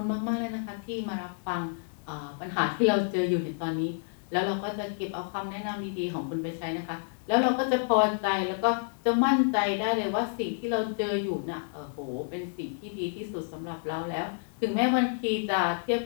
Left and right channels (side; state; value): right; silent; digital silence